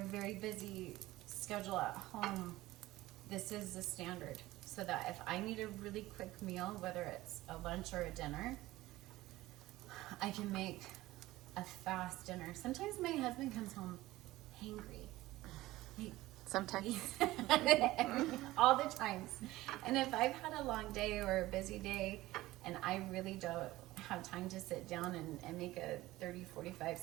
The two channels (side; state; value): left; quieter; 17.5 dB